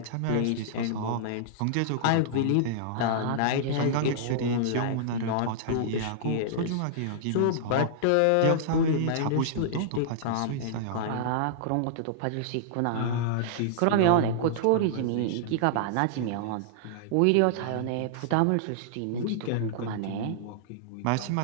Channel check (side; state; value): both; different; correlation -0.02